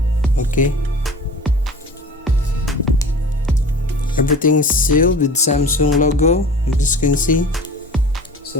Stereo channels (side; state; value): both; normal; correlation 0.40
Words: Okay, everything's sealed with Samsung logo, you just can see. So